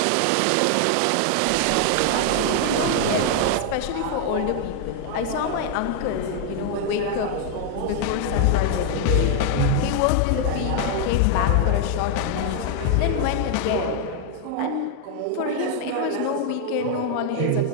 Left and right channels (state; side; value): different; both; correlation 0.00